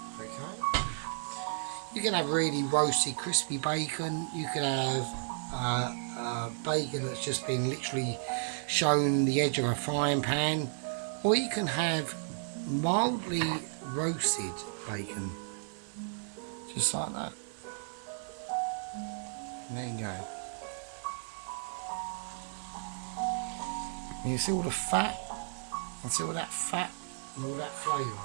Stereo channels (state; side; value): silent; left; digital silence